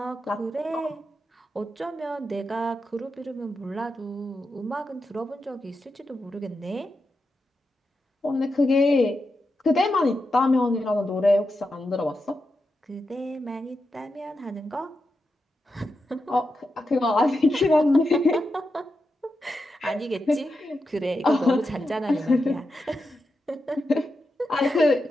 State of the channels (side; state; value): both; normal; correlation 0.88